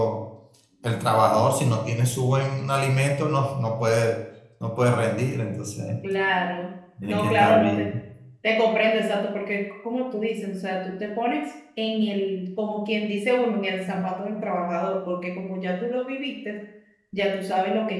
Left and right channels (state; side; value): identical; both; correlation 1.00